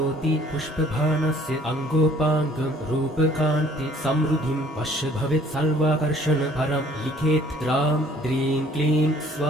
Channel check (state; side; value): normal; both; correlation 0.57